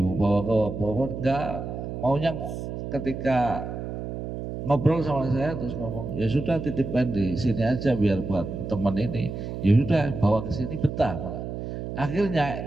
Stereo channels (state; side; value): noise; right; hum, 6 dB below the sound